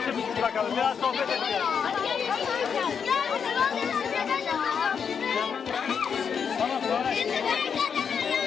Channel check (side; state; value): right; quieter; 6.8 dB